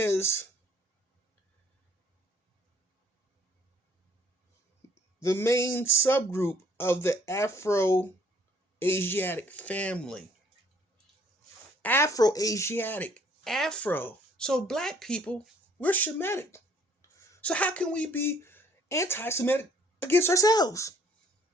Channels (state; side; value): normal; both; correlation 0.60